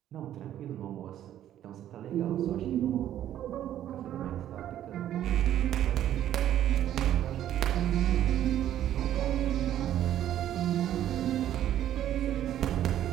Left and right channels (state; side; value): quieter; left; 11.6 dB